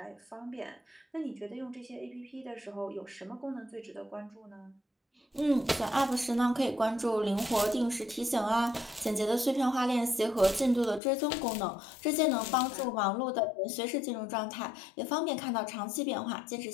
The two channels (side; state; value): right; drops out; at 11.0 s